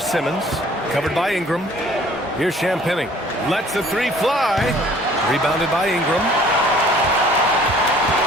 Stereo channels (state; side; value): normal; both; correlation 0.54